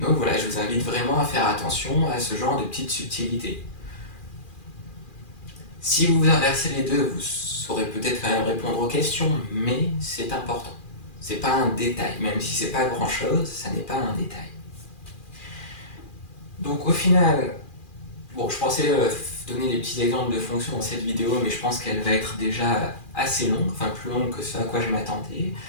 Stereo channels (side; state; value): right; late; 2.4 ms